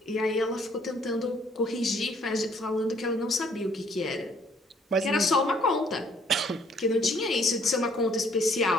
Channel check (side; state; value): both; normal; correlation 0.62